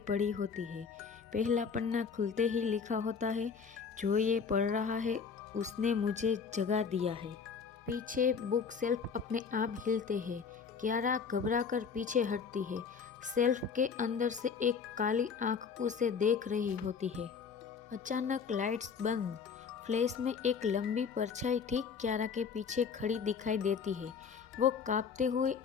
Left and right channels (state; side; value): quieter; right; 6.0 dB